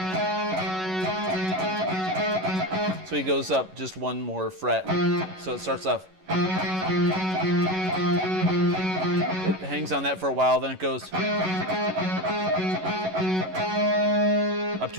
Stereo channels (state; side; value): late; left; 11 ms